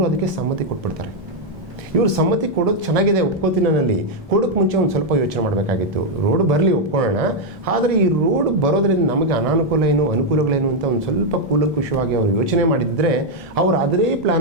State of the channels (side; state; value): both; normal; correlation 0.01